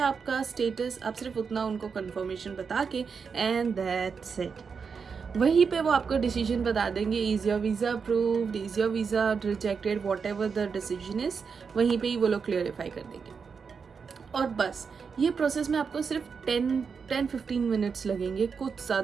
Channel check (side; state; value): left; quieter; 5.7 dB